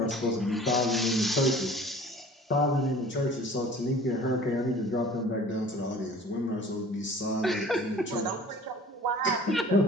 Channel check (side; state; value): both; normal; correlation 0.46